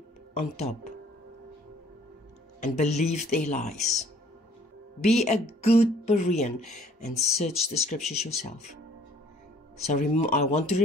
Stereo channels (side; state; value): both; normal; correlation 0.57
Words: on top and believe their lies. Be a good Berean and search the scriptures yourself. So I want to